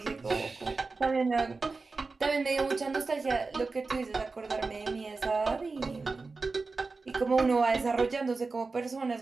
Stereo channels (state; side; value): quieter; left; 4.0 dB